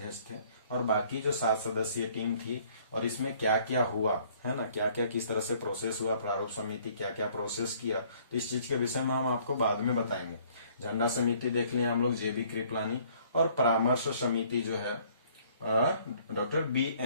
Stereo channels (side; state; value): both; inverted; correlation -0.60